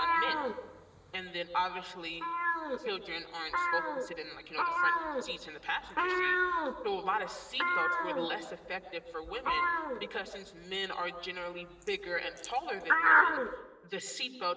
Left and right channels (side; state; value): both; identical; correlation 1.00